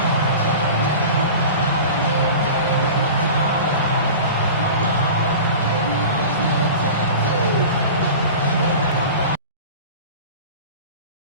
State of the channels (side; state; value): both; inverted; correlation -0.36